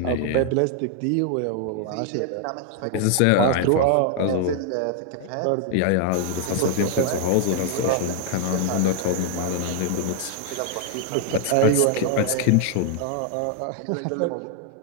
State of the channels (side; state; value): both; different; correlation 0.00